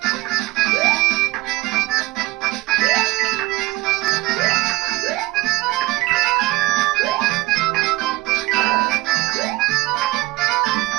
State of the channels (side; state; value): left; quieter; 19.2 dB